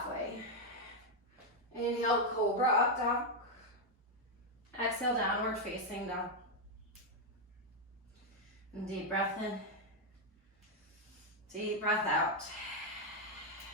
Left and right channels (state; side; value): normal; both; correlation 0.01